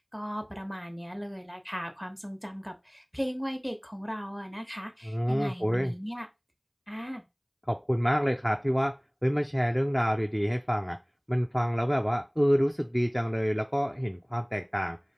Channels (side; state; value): both; identical; correlation 1.00